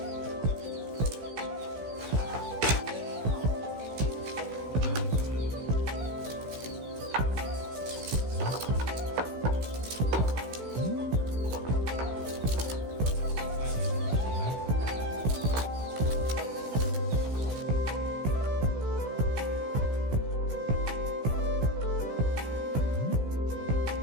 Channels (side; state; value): left; late; 16 ms